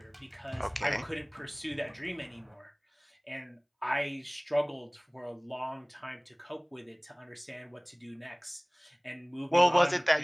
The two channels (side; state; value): both; identical; correlation 1.00